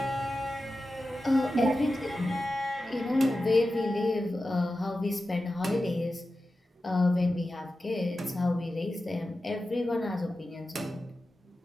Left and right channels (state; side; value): normal; both; correlation 0.93